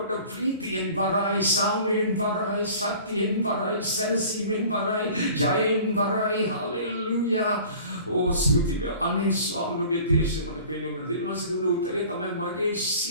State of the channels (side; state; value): both; inverted; correlation -0.46